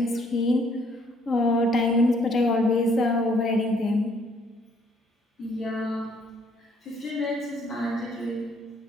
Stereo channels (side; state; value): both; normal; correlation 0.65